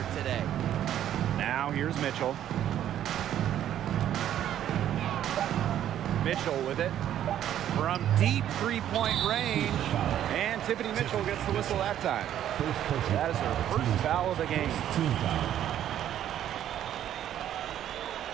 today. Now here's Mitchell. Mitchell with it. From deep three-point range. And Tiffany Mitchell gets the whistle that time. That is her first foul of the game. Team foul.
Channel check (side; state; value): left; quieter; 11.1 dB